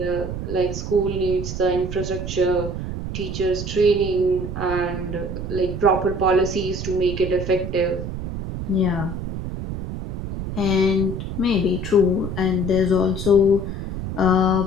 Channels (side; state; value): right; noise; rumble, 6 dB below the sound